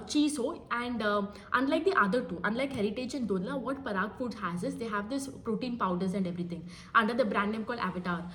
cheese हो, and unlike the other two, unlike Heritage and Dodla, what Parag Foods has is they have this protein powders and everything under the brand name called Avatar.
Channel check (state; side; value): identical; both; correlation 1.00